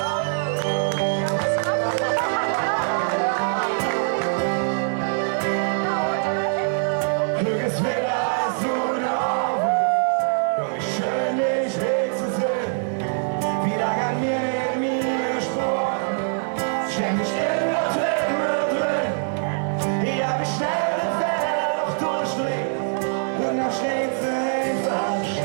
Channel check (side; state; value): left; silent; digital silence